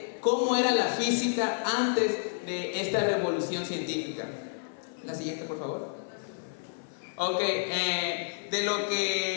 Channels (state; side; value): silent; right; 58 dB below the other